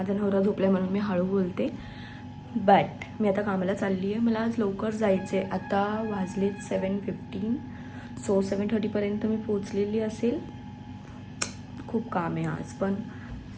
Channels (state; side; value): identical; both; correlation 1.00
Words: नवरा झोपला म्हणून मी हळू बोलते, बट मी आता कामाला चालली आहे. मला आज लवकर जायचं आहे. आता वाजलेत 7:15. सो 7:30पर्यंत मी पोचलेली असेल. खूप काम आहे आज, पण